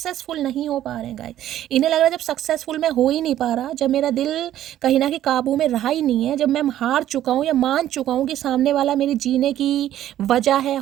नहीं हो पा रहे हैं गाइस। इन्हें लग रहा है जब सक्सेसफुल मैं हो ही नहीं पा रहा, जब मेरा दिल कहीं ना कहीं काबू में रहा ही नहीं है, जब मैं हार चुका हूँ या मान चुका हूँ कि सामने वाला मेरी जीने की वजह है।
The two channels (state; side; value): quieter; left; 12.3 dB